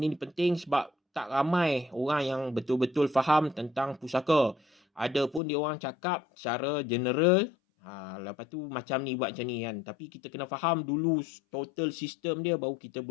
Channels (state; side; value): drops out; right; at 5.4 s